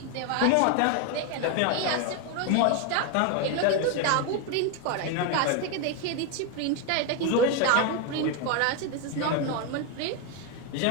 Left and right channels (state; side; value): different; both; correlation 0.02